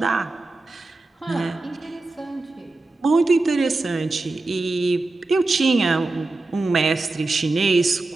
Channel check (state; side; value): quieter; left; 3.2 dB